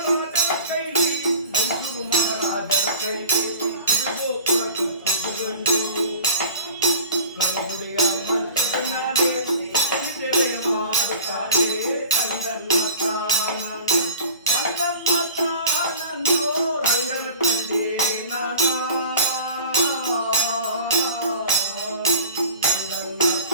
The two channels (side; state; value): both; inverted; correlation -0.41